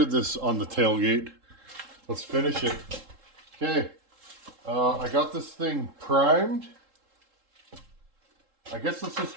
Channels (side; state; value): left; late; 3.7 ms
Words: this on the tailgate. Let's finish it. Okay, I got this thing primed. I guess let's just